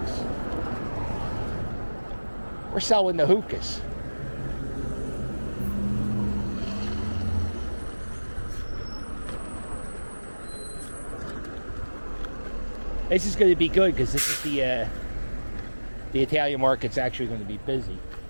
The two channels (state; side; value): inverted; both; correlation -1.00